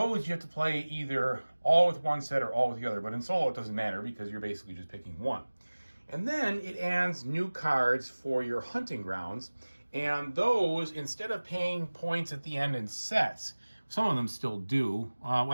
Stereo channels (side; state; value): both; inverted; correlation -1.00